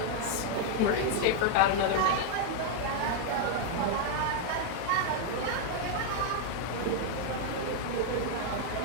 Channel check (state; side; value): different; both; correlation 0.00